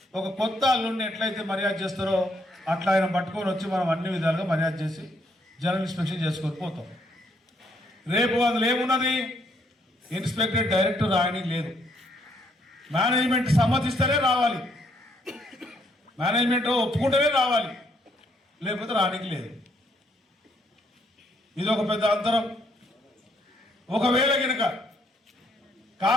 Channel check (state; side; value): normal; both; correlation 0.70